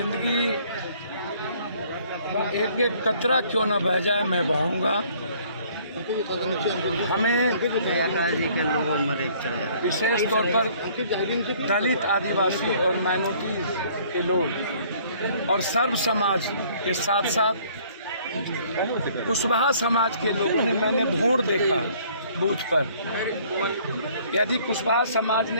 का एक एक कतरा क्यों न बह जाए, मैं बहाऊंगा। हमें जी के लोगों में विशेष तौर पर दलित, आदिवासी और माइनॉरिटी के लोग और सर्व समाज के साथ साथ कुशवाहा समाज के लोगों ने, मैंने वोट देखा बूथ पर। यदि कुशवाहा समाज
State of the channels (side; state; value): both; inverted; correlation -0.58